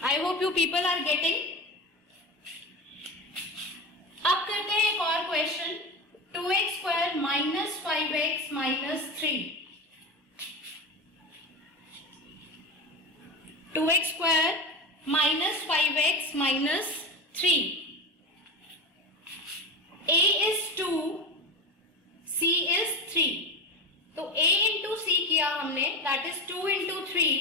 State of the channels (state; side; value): normal; both; correlation 0.24